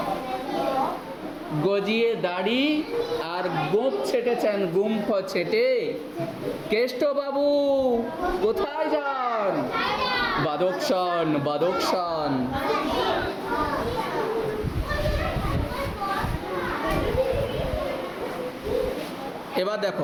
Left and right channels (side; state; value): both; identical; correlation 1.00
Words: গজিয়ে দাড়ি আর গোঁফ ছেটেছেন, গুম্ফ ছেটে। কেষ্টবাবু কোথায় যান? বাদকসান, বাদকসান। এবার